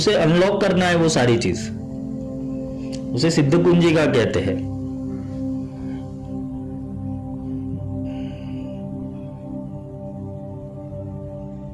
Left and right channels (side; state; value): both; identical; correlation 1.00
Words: अनलॉक करना है। वो सारी चीज उसे सिद्ध कुंजिका कहते हैं।